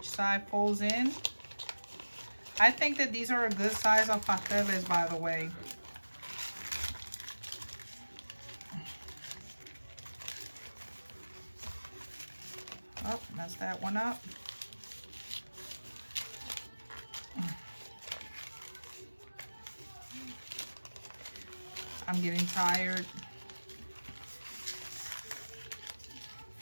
side folds in. I think that these are a good size of pasteles, by the way. Oh, messed that one up. I'm getting tired.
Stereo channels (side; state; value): both; inverted; correlation -1.00